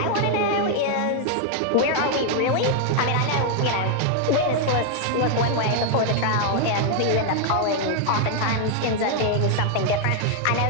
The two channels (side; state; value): both; different; correlation 0.00